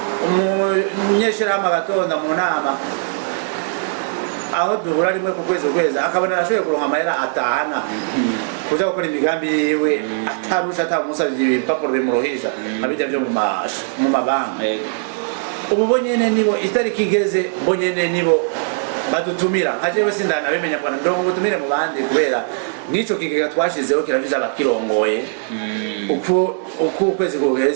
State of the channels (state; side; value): silent; left; 64 dB below the other